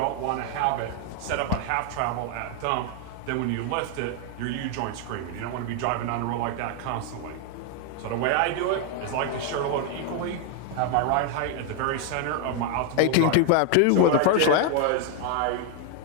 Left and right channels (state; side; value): different; both; correlation 0.01